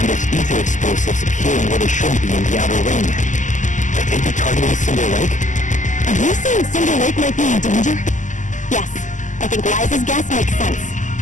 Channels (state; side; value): late; right; 0.37 ms